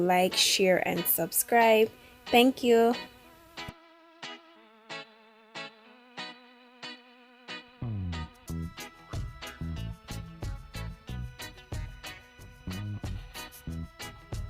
share and subscribe. Thank you.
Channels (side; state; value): both; identical; correlation 1.00